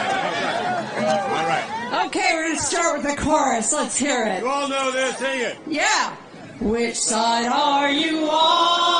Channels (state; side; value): identical; both; correlation 1.00